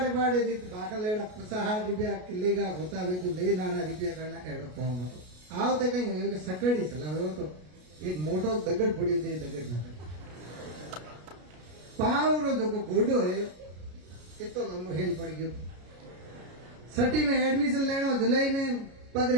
बाड़े भाकल एड़ा 50-60 रुपया किले का होता हुए तो ले नाना रुपया करना एड़ो कौन हो। आओ तो कहीं हो सकड़ी सलाह हो तो एक मोटो दगड़ पड़ियो थे, दगड़ ना पाव रो जो गोडो है इतो लंबो हेल पड़ गयो। सटी में एडमिशन लेनो, जुलाई में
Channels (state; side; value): late; left; 33 ms